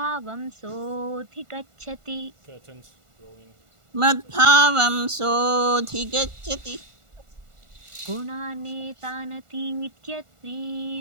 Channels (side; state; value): left; late; 1.4 ms